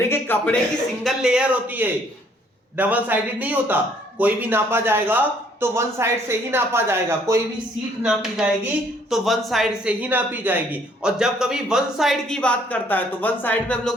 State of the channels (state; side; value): normal; both; correlation 0.63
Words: कि कपड़े की सिंगल लेयर होती है, डबल साइडेड नहीं होता। कोई भी नापा जाएगा तो वन साइड से ही नापा जाएगा, कोई भी सीट नापी जाएगी तो वन साइड से ही नापी जाएगी। और जब कभी वन साइड की बात करता है तो वन साइड में हम